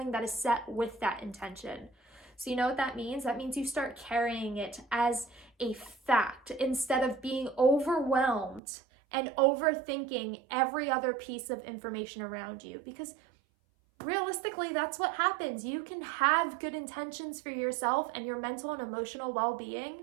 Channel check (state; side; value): drops out; left; at 8.6 s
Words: that is set with that intention. So you know what that means? That means you start carrying it as a fact instead of being overwhelmed and overthinking every other piece of information around you. Because realistically, that's what happens. You can have good intentions for yourself and your mental and emotional